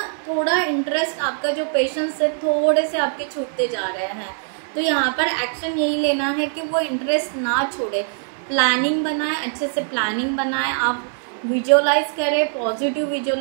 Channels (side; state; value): left; silent; 64 dB below the other